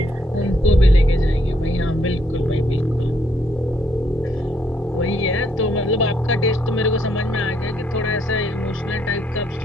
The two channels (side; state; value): both; normal; correlation 0.72